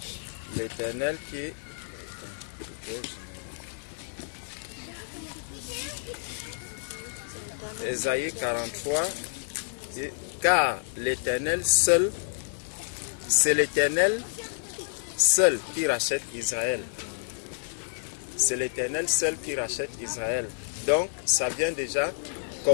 l'Éternel qui... Ésaïe 43, dit, car l'Éternel seul, c'est l'Éternel seul qui rachète Israël. C'est l'Éternel seul qui rachète Israël. Donc, ça vient déjà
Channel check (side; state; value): right; silent; digital silence